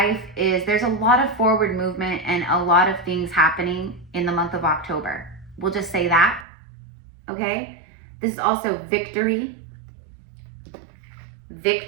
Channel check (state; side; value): drops out; left; at 6.5 s